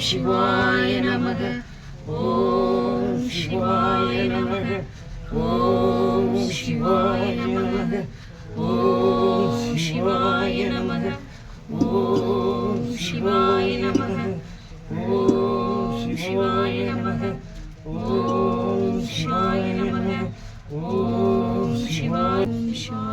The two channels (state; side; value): identical; both; correlation 1.00